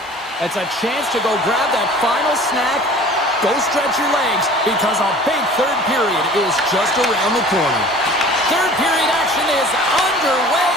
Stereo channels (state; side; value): normal; both; correlation 0.45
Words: It's a chance to go grab that final snack. Go stretch your legs, because a big third period is just around the corner. Third period action is underway,